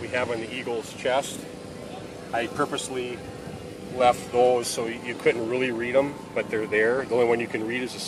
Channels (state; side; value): identical; both; correlation 1.00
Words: have on the eagle's chest, I purposely left those so you couldn't really read them, but they're there. The only one you can read is the